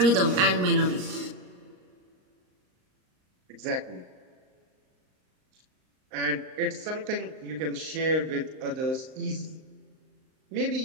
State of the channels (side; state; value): left; late; 38 ms